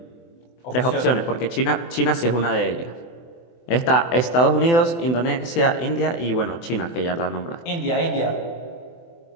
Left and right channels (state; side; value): late; right; 24 ms